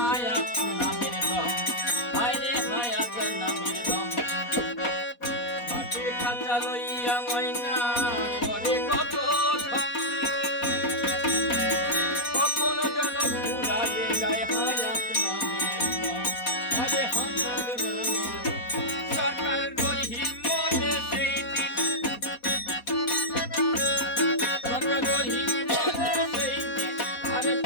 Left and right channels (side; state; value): right; late; 4.1 ms